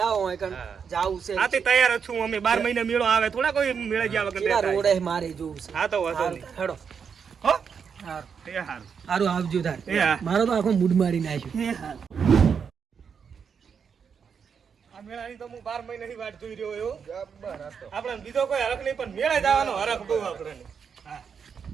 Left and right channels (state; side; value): quieter; left; 6.6 dB